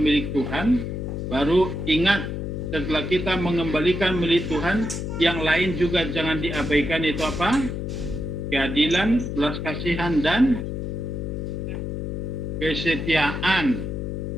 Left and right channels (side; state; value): left; noise; hum, 4 dB below the sound